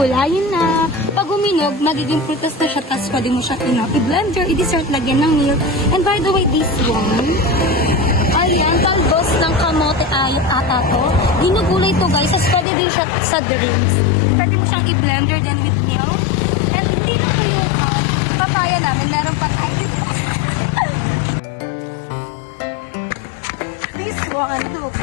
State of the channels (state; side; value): drops out; right; at 12.7 s